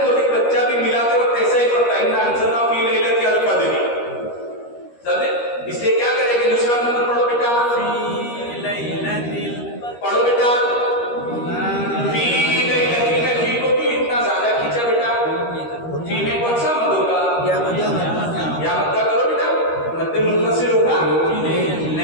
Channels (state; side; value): late; right; 13 ms